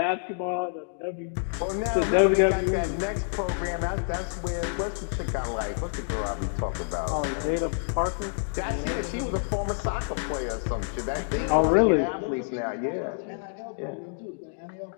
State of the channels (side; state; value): right; silent; digital silence